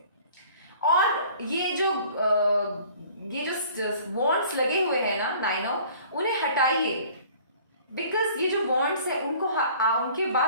और ये जो वॉन्ड्स लगे हुए हैं ना 9 उन्हें हटाइए, बिकॉज ये जो वॉन्ड्स है उनको उनके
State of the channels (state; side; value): inverted; both; correlation -0.51